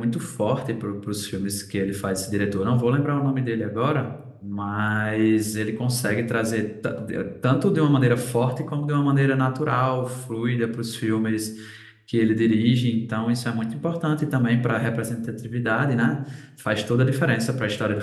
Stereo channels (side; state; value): both; identical; correlation 1.00